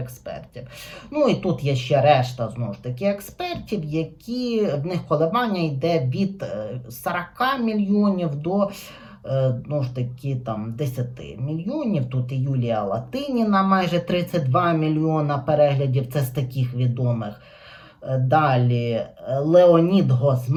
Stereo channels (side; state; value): both; identical; correlation 1.00